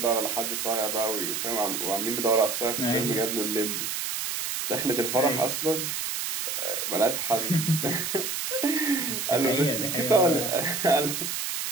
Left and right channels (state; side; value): noise; right; hiss, 2 dB below the sound